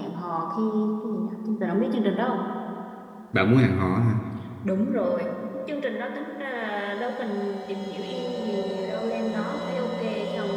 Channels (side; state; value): both; identical; correlation 1.00